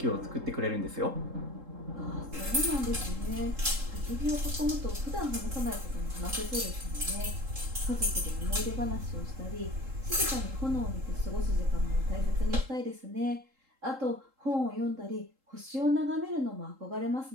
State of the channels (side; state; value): left; late; 3.7 ms